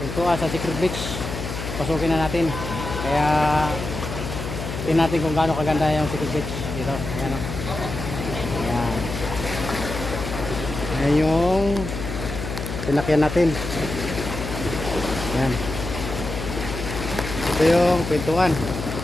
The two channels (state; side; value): noise; left; hum, 6 dB below the sound